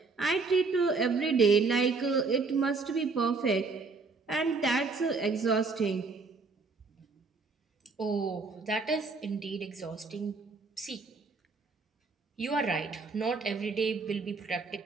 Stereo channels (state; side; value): quieter; left; 4.2 dB